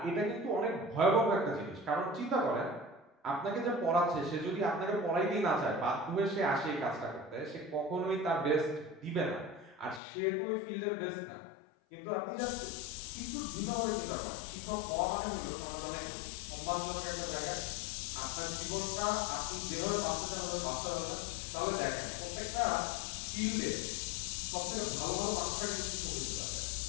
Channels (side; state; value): right; drops out; at 10.0 s